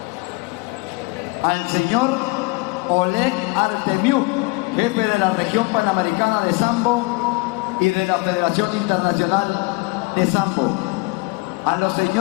al señor Oleg Artemiuk, jefe de la región panamericana de Sambo y de la Federación Internacional de Sambo, a los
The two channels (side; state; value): right; quieter; 25.5 dB